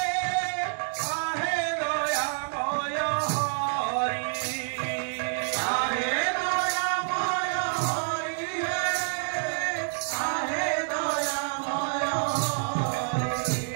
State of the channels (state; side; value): silent; left; 59 dB below the other